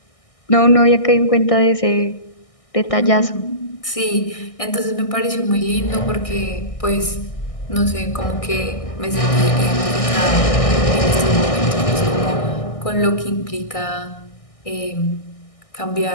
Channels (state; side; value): late; right; 1.6 ms